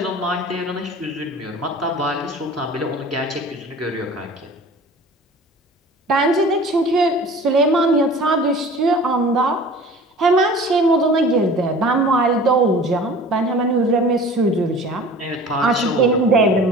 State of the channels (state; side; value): normal; both; correlation 0.43